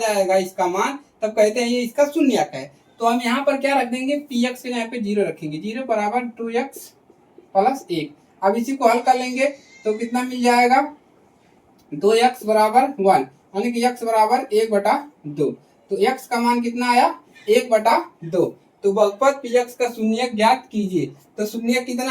इसका मान, तब कहते हैं ये इसका शून्यक है। तो हम यहाँ पर क्या रख देंगे, px के यहाँ पे 0 रखेंगे, 0 बराबर 2x प्लस 1। अब इसी को हल कर लेंगे तो कितना मिल जाएगा, 2x बराबर 1, यानी कि x बराबर 1/2। तो x का मान कितना आया, 1/2। तो बहुपद px का शून्यक ज्ञात कीजिए। तो शून्यक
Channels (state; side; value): identical; both; correlation 1.00